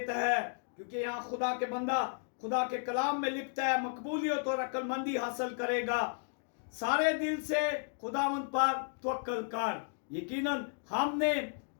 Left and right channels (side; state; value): right; silent; digital silence